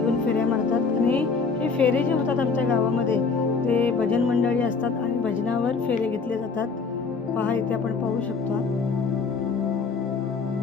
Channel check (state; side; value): quieter; right; 4.7 dB